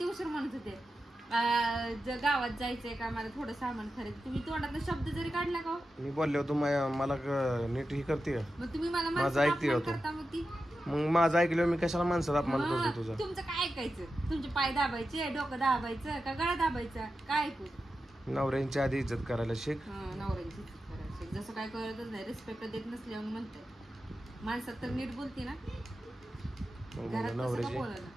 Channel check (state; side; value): normal; both; correlation 0.91